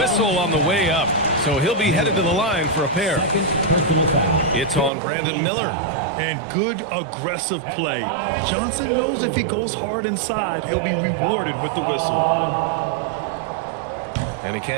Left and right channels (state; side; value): drops out; left; at 4.9 s